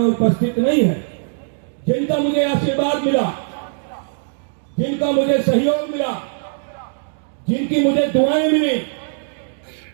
उपस्थित नहीं है, जिनका मुझे आशीर्वाद मिला, जिनका मुझे सहयोग मिला, जिनकी मुझे दुआएं मिली,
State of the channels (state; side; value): silent; left; digital silence